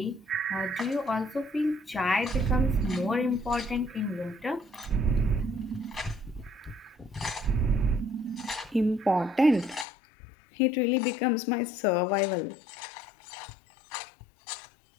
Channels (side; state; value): right; drops out; at 9.9 s